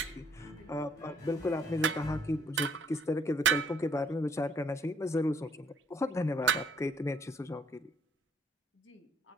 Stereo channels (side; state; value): both; normal; correlation 0.65